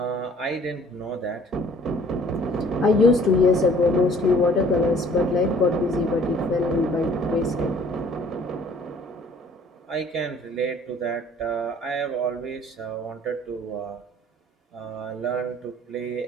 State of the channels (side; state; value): both; normal; correlation 0.55